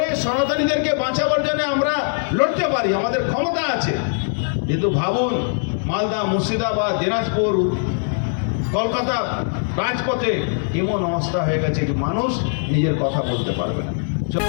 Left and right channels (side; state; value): right; silent; digital silence